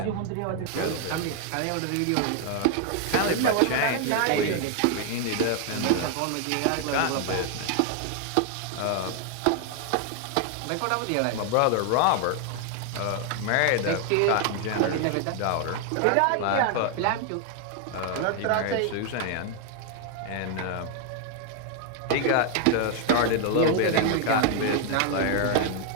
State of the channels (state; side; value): different; both; correlation 0.00